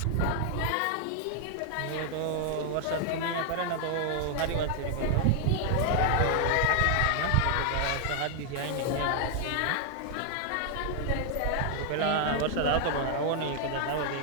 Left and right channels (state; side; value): different; both; correlation 0.00